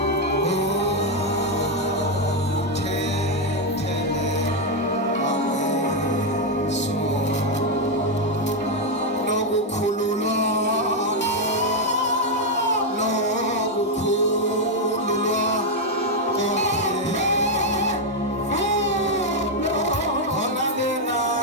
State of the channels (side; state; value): both; normal; correlation 0.02